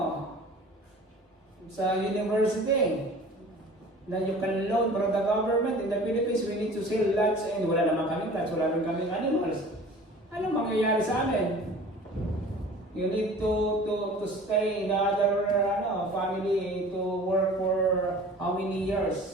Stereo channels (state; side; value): normal; both; correlation 0.44